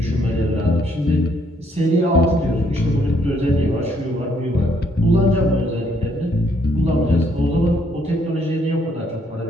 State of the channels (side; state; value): both; normal; correlation 0.69